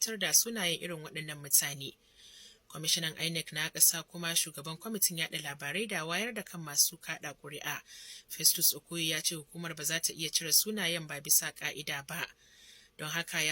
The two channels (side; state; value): both; identical; correlation 1.00